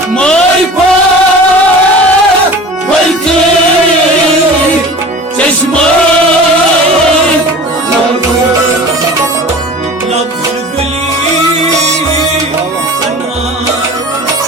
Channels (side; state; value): both; normal; correlation 0.39